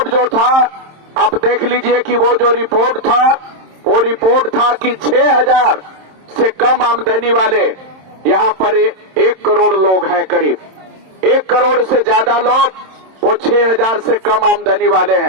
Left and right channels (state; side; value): late; left; 27 ms